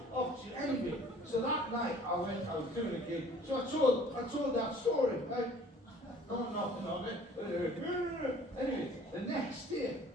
off to anyway. So that night I was doing a gig. So I told that story, right? Not nothing of it. Anyway, the next day,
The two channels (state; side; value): normal; both; correlation 0.52